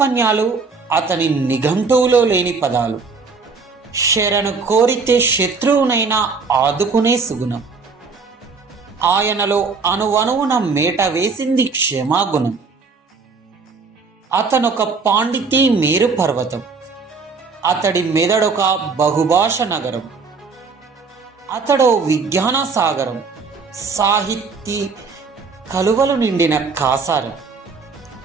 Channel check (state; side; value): quieter; left; 4.7 dB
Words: అతని నిఘంటువులో లేని పదాలు. శరణు కోరితే శత్రువునైనా ఆదుకునే సుగుణం. ఆయనలో అణువణువున మేట వేసింది క్షమాగుణం. అతనొక పాండితీ మేరు పర్వతం. అతడి మెదడొక బహుభాష నగరం. అతడో విజ్ఞాన సాగరం, సాహితీ కలువలు నిండిన కాసారం.